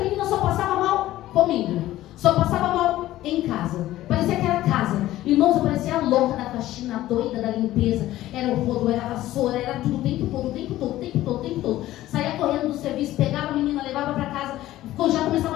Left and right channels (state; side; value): quieter; right; 15.0 dB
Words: menina só passava mal comigo. Só passava mal em casa. Parecia que era casa. Irmãos, eu parecia a louca da faxina, a doida da limpeza. Era o rodo, era a vassoura, era tudo o tempo todo. Saía correndo do serviço, pegava a menina, levava para casa. Já começava